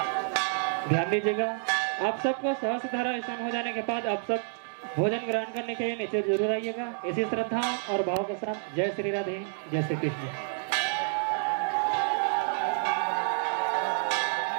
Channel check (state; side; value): silent; left; digital silence